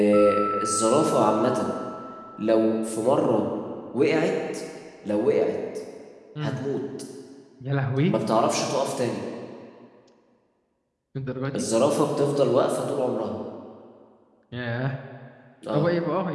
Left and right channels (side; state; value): both; identical; correlation 1.00